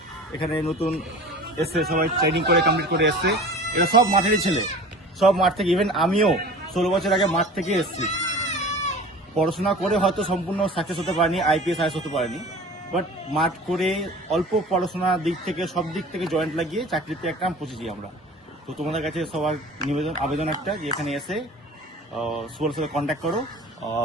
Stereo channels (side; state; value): both; normal; correlation 0.40